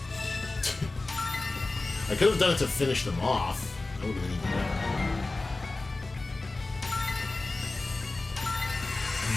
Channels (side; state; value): right; quieter; 3.2 dB